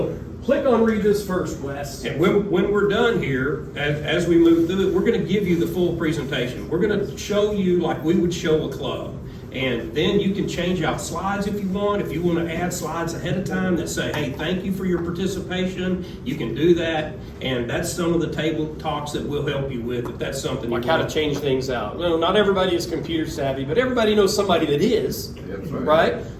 click on Read This First, Wes. And when we're done here, as we move through it, we're going to give you the full presentation. We're going to show you like we would show a club. And then you can change out slides if you want. If you want to add slides ahead of time that say, hey, thank you for your participation, you can do that. And that's some of the table talks that we'll help you with if that's something Like you how want. to change things out. Well, not everybody is computer savvy, but everybody knows somebody that is, right?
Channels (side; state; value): both; identical; correlation 1.00